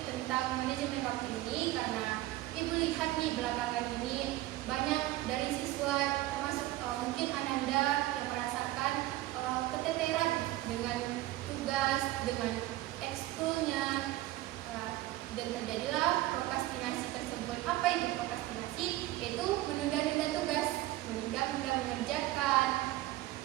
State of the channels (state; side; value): quieter; left; 16.6 dB